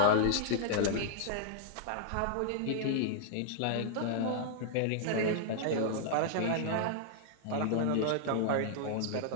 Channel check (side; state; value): both; different; correlation -0.01